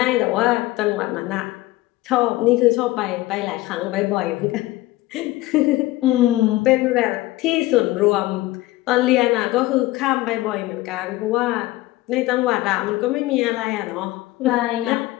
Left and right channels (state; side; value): quieter; right; 18.2 dB